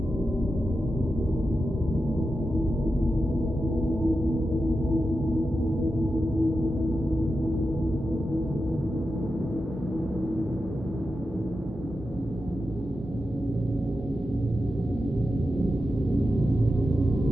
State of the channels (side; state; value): both; normal; correlation 0.90